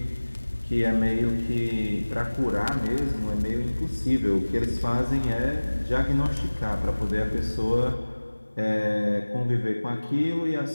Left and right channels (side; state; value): both; inverted; correlation -1.00